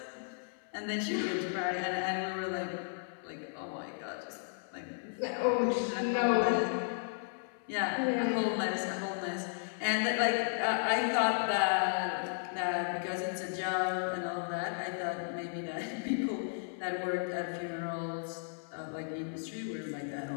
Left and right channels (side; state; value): right; silent; 55 dB below the other